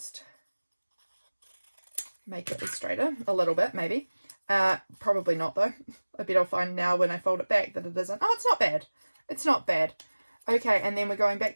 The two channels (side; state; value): both; inverted; correlation -1.00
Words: make it straighter a little bit, maybe. Probably not though. I bet I'll find now when I fold it back that it isn't. Oh, it's not bad. It's not bad. Okay, and then we're going back